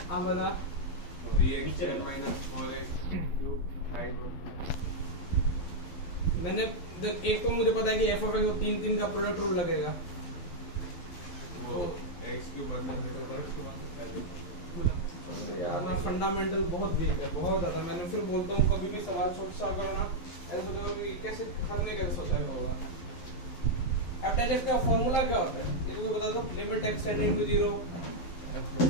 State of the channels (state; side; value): late; right; 12 ms